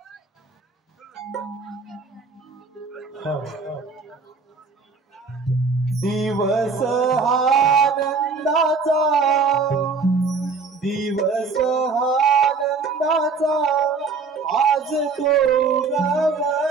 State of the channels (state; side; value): quieter; left; 4.6 dB